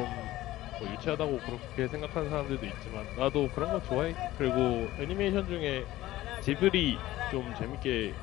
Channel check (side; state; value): right; quieter; 16.0 dB